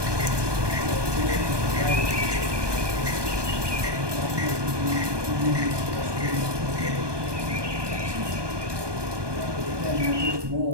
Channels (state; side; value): late; left; 1.2 ms